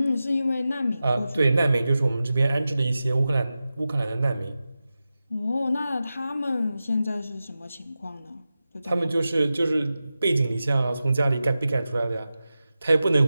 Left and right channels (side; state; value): both; inverted; correlation -0.93